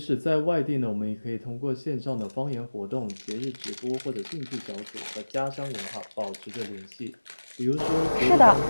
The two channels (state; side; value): inverted; both; correlation -1.00